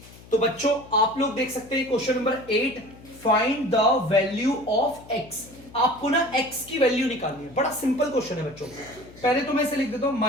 तो बच्चों आप लोग देख सकते हैं question number 8, find the value of x। आपको ना x की वैल्यू निकालनी है, बड़ा सिंपल क्वेश्चन है बच्चों। पहले तो मैं इसे लिख देता हूं,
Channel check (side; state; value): left; noise; hum, 21 dB below the sound